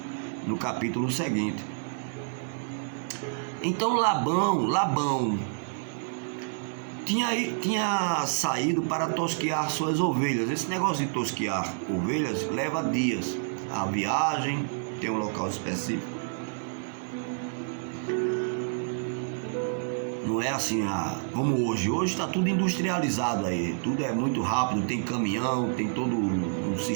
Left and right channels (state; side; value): silent; left; digital silence